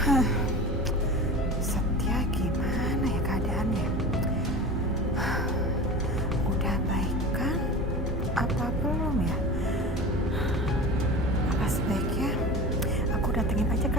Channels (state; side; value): normal; both; correlation 0.32